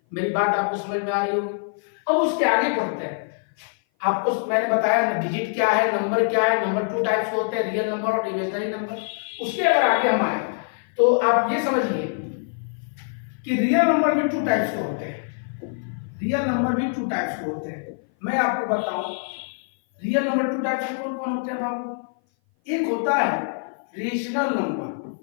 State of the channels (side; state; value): right; silent; 57 dB below the other